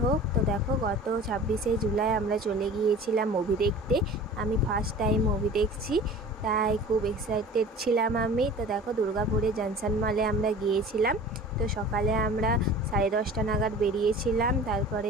তো দেখো গত 26শে জুলাই আমরা চলে গিয়েছিলাম মুভি দেখতে। আমি ফার্স্ট টাইম মুভি দেখছি, তাই খুব এক্সাইটেড ছিলাম আমি। তো দেখো দুর্গাপুরে জনসন মলে আমরা গিয়েছিলাম। তো সকালে আমরা 10:30 নাগাদ বেরিয়েছিলাম, তারপরে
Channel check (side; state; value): both; normal; correlation 0.41